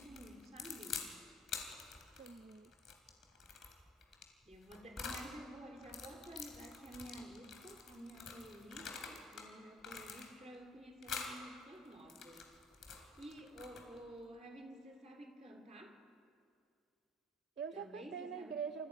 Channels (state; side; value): normal; both; correlation 0.51